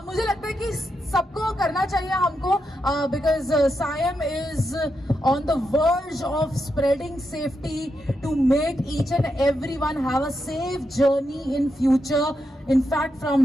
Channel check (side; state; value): both; normal; correlation 0.84